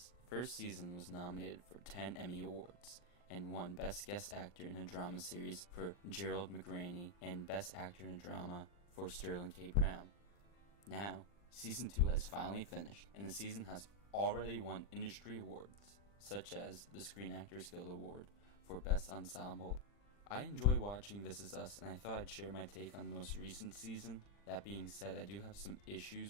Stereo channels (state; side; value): late; right; 40 ms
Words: The first season was nominated for 10 Emmy Awards and won Best Guest Actor in a Drama Series for Gerald McRaney and Best Actor in a Drama for Sterling K. Brown. Now, Season 2 has finally finished, and the season has already won industry awards, such as the Screen Actors Guild Award for Best Ensemble. I enjoy watching This Is Us, and I thought I'd share my take on the most recent season. That being said, I do have some